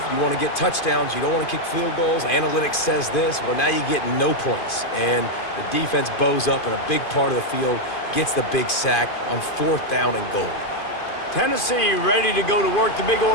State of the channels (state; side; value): late; right; 2.5 ms